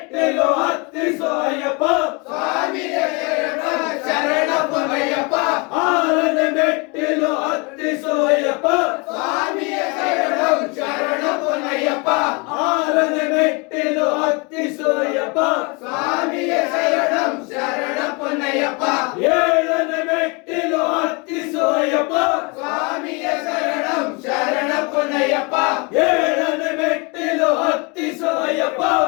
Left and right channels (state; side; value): quieter; right; 30.1 dB